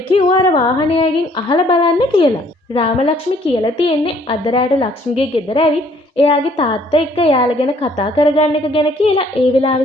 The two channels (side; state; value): both; normal; correlation 0.62